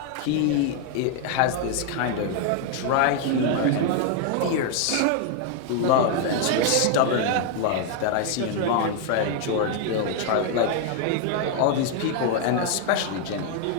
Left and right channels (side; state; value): both; different; correlation 0.00